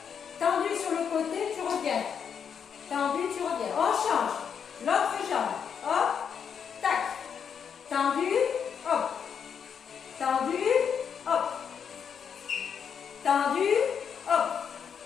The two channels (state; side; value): quieter; right; 7.3 dB